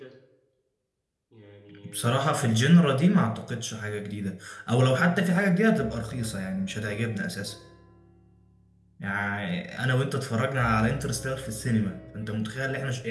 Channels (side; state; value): both; identical; correlation 1.00